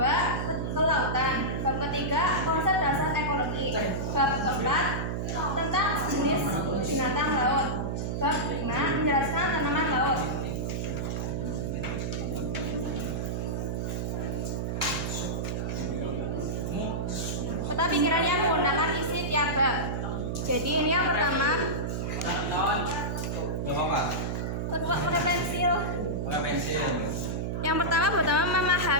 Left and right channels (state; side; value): noise; right; hum, 1 dB below the sound